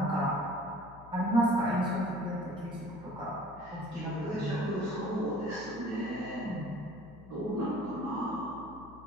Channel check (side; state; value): left; noise; hum, 19 dB below the sound